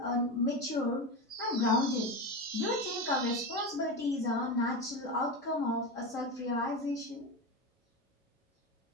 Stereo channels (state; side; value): normal; both; correlation 0.20